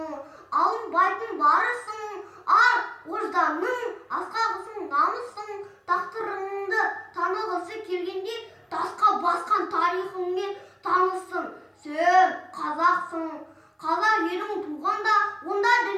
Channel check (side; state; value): both; identical; correlation 1.00